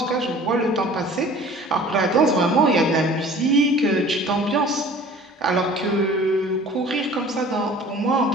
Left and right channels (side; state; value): both; normal; correlation 0.47